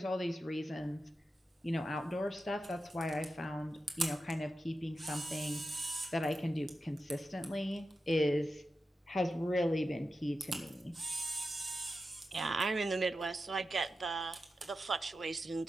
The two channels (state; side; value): normal; both; correlation 0.91